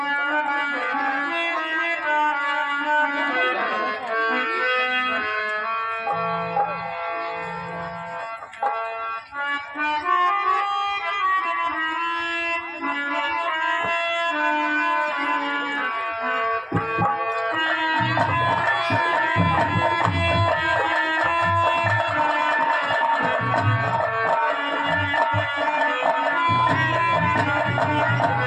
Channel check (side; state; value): both; identical; correlation 1.00